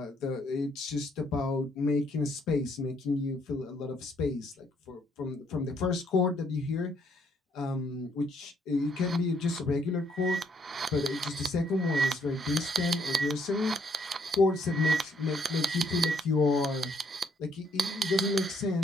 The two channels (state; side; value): normal; both; correlation 0.69